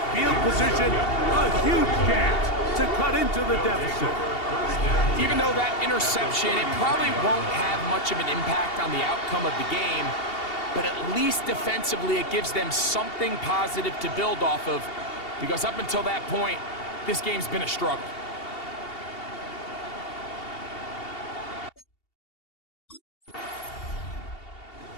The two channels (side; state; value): right; late; 2.7 ms